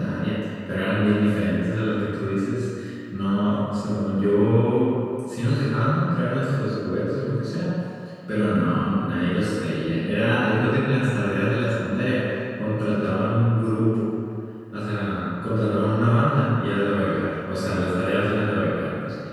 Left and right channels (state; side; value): identical; both; correlation 1.00